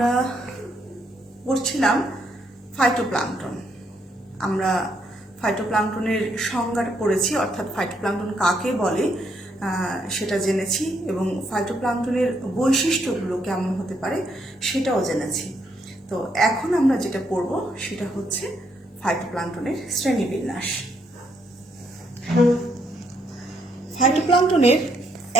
পড়ছিলাম ফাইটোপ্লাঙ্কটন। আমরা ফাইটোপ্লাঙ্কটনের সংজ্ঞাটা পড়েছি, অর্থাৎ ফাইটোপ্লাঙ্কটন কাকে বলে সেটা জেনেছি এবং ফাইটোপ্লাঙ্কটনের বৈশিষ্ট্যগুলো কেমন হতে পারে সেটাও জেনেছি। তো এখন আমরা যেটা পড়ব সেটা হচ্ছে ফাইটোপ্লাঙ্কটনের শ্রেণীবিন্যাস। ফাইটোপ্লাঙ্কটনের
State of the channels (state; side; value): normal; both; correlation 0.74